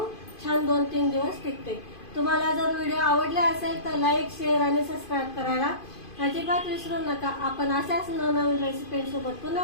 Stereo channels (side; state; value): right; late; 2.5 ms